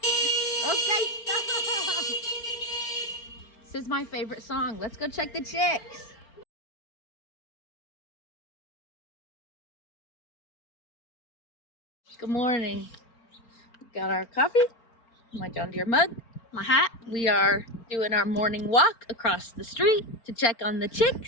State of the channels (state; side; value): late; right; 4.4 ms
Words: Okay, stop. This is my favorite song. Let's go check the chicks. Good morning. Got our coffee, my John Deere mug, my hat. We are doing our morning walk across the street to check on the